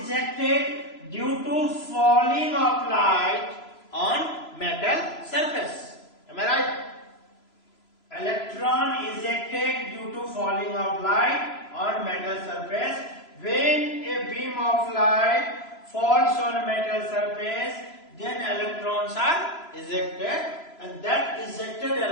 ejected due to falling of light on metal surface. Am I right? Electron ejected due to falling of light on metal surface. When a beam of light falls on a metal surface, then electrons are ejected, and that ejected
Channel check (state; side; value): late; right; 3.0 ms